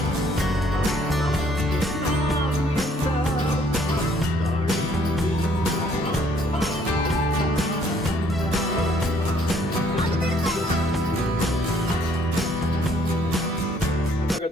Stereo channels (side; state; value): both; normal; correlation 0.64